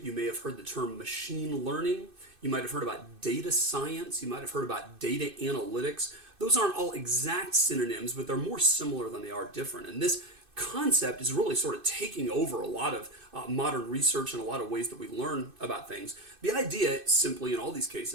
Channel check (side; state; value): left; late; 2.6 ms